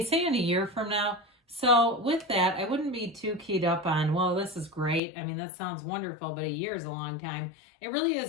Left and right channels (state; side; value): drops out; right; at 5.0 s